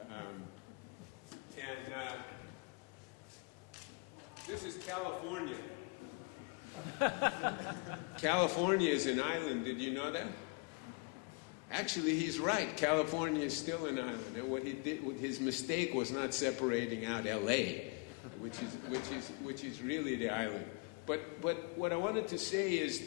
This is California. California is an island. Did you know that? Actually, he's right. California is still an island. And what he did, his mistake was not separating out L.A., which is really the island. But what I wanted to say is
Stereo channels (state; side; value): quieter; right; 31.3 dB